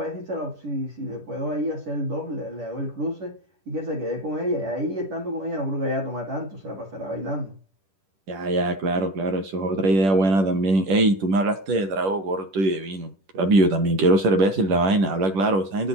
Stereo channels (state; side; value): late; left; 10 ms